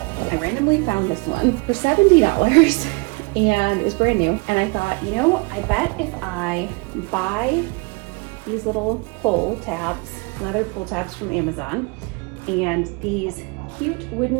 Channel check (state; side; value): quieter; left; 29.5 dB